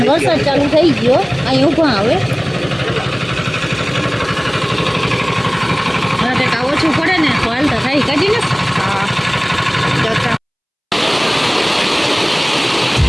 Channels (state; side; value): identical; both; correlation 1.00